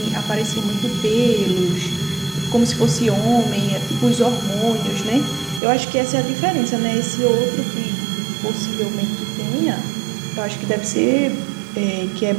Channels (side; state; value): left; drops out; at 5.6 s